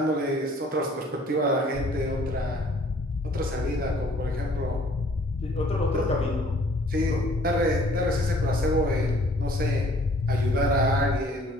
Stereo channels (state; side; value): normal; both; correlation 0.57